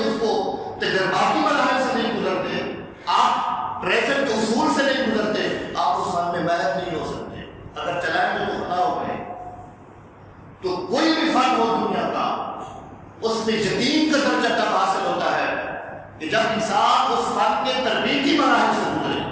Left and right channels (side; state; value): both; identical; correlation 1.00